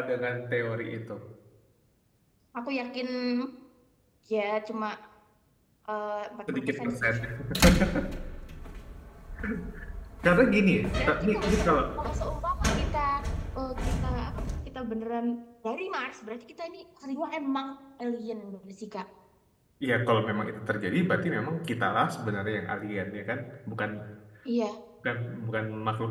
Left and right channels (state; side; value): identical; both; correlation 1.00